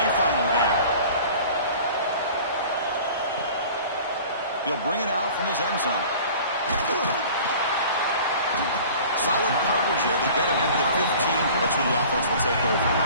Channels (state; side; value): inverted; both; correlation -0.44